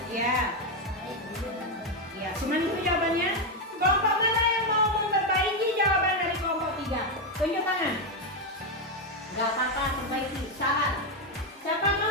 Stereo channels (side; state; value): both; normal; correlation 0.05